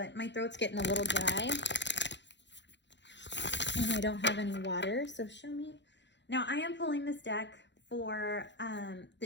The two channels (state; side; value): late; right; 0.52 ms